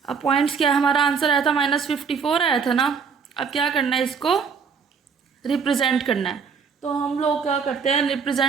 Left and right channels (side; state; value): left; quieter; 6.0 dB